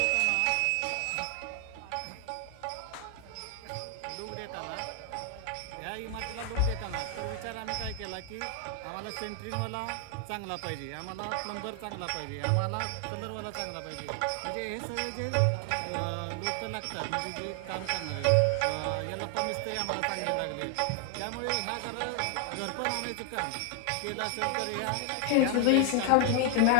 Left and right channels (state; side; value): different; both; correlation 0.00